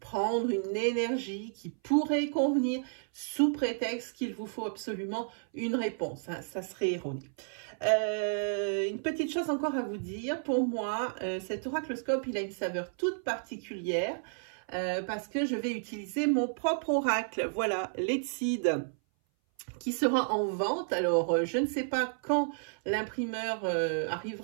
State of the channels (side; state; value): left; silent; 57 dB below the other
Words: une énergie qui pourrait convenir sous prétexte qu'il vous faut absolument une réponse. Ça serait erroné. Une petite chose encore à vous dire, pour moi, cet oracloscope, il a une saveur toute particulière parce que je vais utiliser mon propre oracle. Voilà, l'Etsid, qui sera en vente. Alors, je ne sais pas quand l'imprimeur